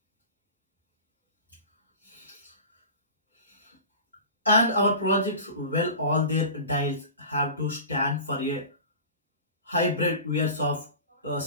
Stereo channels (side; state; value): both; inverted; correlation -0.35